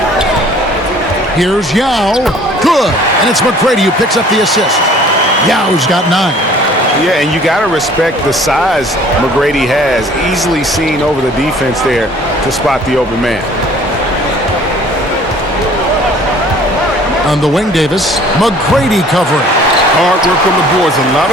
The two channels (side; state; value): both; normal; correlation 0.53